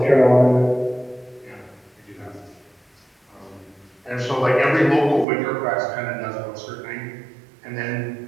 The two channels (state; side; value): drops out; left; at 5.2 s